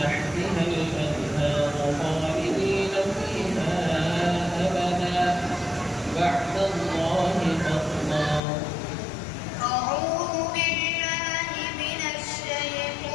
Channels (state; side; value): drops out; right; at 8.4 s